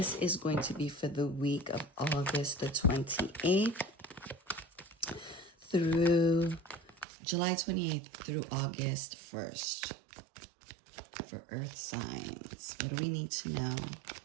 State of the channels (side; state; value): left; drops out; at 7.1 s